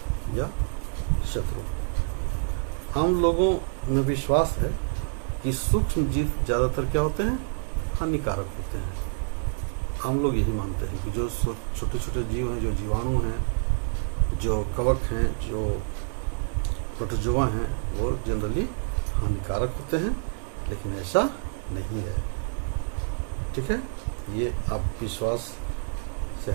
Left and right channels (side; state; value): left; silent; digital silence